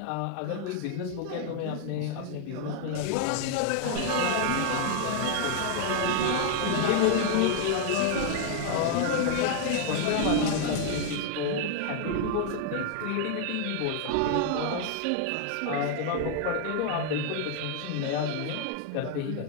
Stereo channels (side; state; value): both; different; correlation 0.00